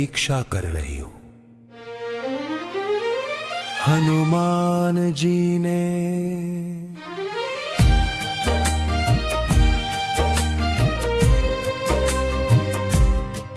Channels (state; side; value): identical; both; correlation 1.00